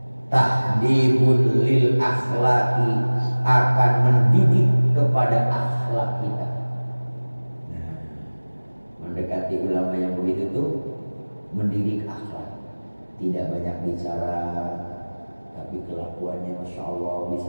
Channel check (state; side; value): inverted; both; correlation -1.00